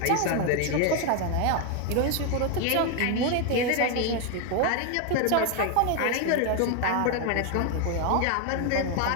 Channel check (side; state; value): both; different; correlation 0.01